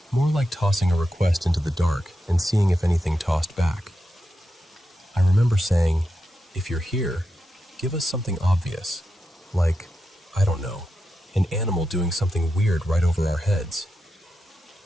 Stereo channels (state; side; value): normal; both; correlation 0.88